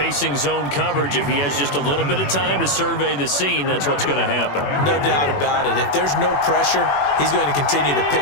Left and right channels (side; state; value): right; late; 21 ms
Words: zone coverage. If he has just a little bit of time to survey the scene, that's what's going to happen. No doubt about it. If there's no pressure, he's going to continue to